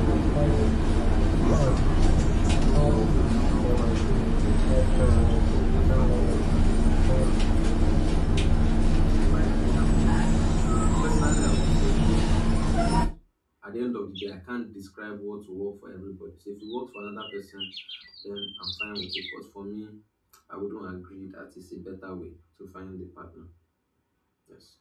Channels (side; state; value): both; identical; correlation 1.00